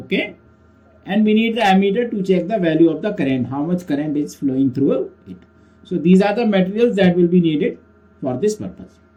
and we need the ammeter to check the value of the current, how much current is flowing through it. So these are the materials that will be needed for this purpose.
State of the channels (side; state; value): both; identical; correlation 1.00